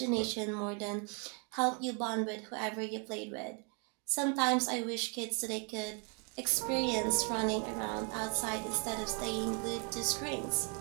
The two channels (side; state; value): left; quieter; 37.0 dB